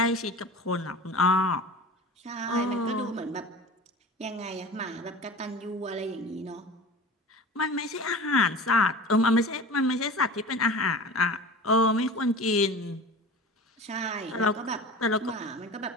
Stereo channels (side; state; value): both; normal; correlation 0.35